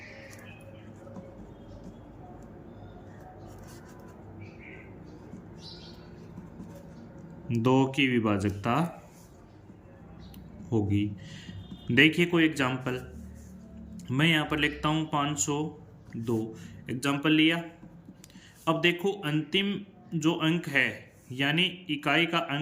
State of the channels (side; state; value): both; identical; correlation 1.00